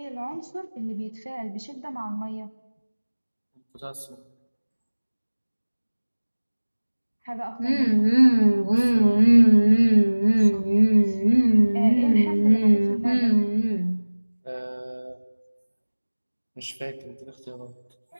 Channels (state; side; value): inverted; both; correlation -1.00